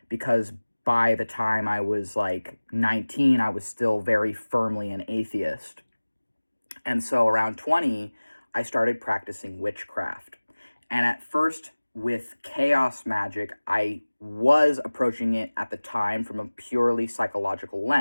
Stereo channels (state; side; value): inverted; both; correlation -1.00